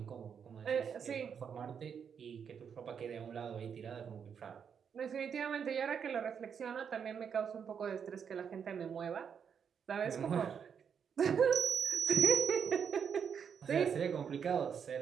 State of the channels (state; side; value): quieter; left; 7.2 dB